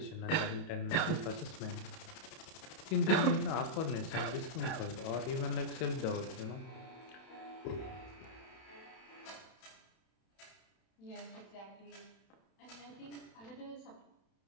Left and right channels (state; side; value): late; right; 31 ms